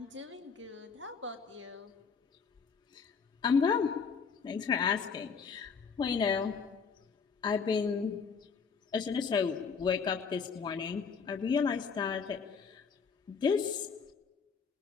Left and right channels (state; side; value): quieter; right; 5.8 dB